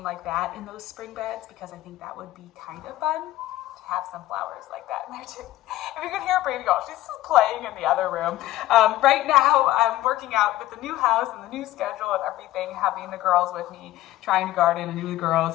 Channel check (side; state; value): right; quieter; 15.6 dB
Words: like that in those spring beds, because I think that would be kind of fun to have some flowers like that in there too. If you can hear Brady go, she's just playing in the other room. Right now I'm working out with the new house and the new schedule and everything, having the girls with me, trying to garden and do the girls